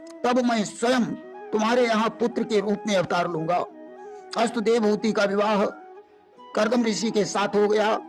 तब मैं स्वयं तुम्हारे यहाँ पुत्र के रूप में अवतार लूंगा। अस्तु, देवहूति का विवाह कर्दम ऋषि के साथ हो गया।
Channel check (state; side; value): identical; both; correlation 1.00